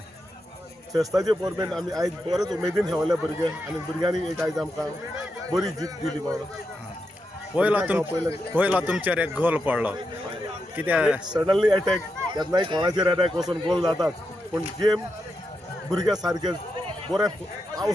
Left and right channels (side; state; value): both; normal; correlation 0.86